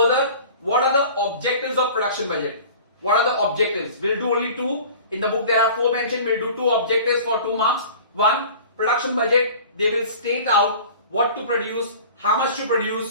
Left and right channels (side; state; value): both; inverted; correlation -0.42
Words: what are the objectives of production budget? What are the objectives? We'll do only 2. In the book there are 4 mentioned. We'll do 2 objectives for 2 marks. 1, production budget, they will state out what to produce, how much to